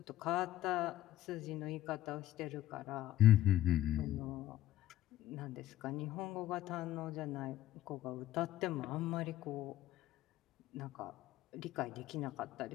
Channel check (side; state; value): right; quieter; 13.8 dB